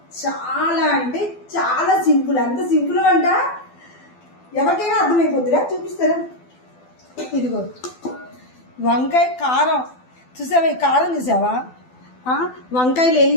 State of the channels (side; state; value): right; late; 12 ms